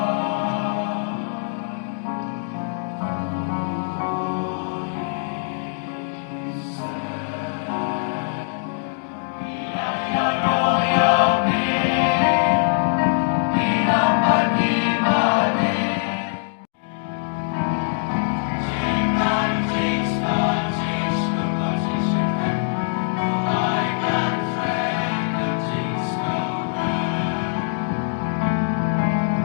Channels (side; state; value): right; silent; digital silence